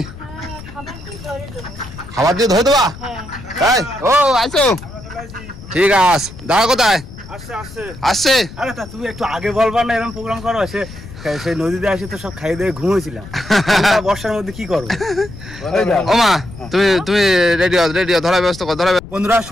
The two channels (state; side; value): noise; left; rumble, 15 dB below the sound